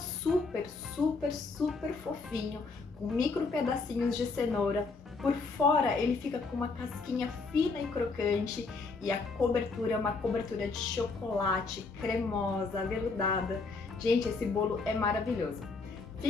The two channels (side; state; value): right; quieter; 4.1 dB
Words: fofinho, com micro pedacinhos de cenoura. Por fora, ele fica com uma casquinha fina e crocante e a cobertura é uma cobertura de chocolate, cremosa, aveludada. Gente, esse bolo é maravilhoso.